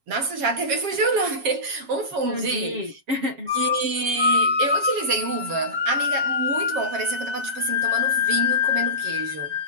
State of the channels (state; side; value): late; left; 7.3 ms